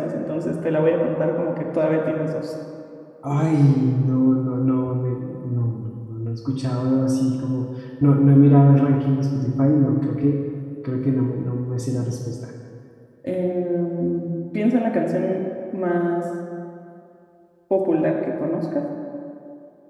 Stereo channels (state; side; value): identical; both; correlation 1.00